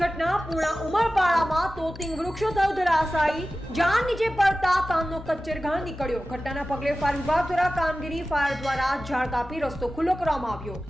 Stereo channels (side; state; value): both; normal; correlation 0.95